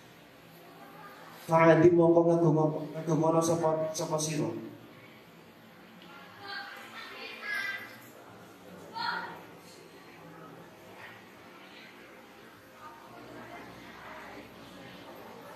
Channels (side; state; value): both; identical; correlation 1.00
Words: Fa'azim mongko ngagomono sapa sira.